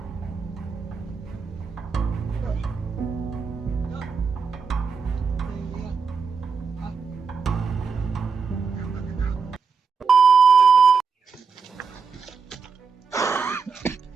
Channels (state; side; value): quieter; left; 5.4 dB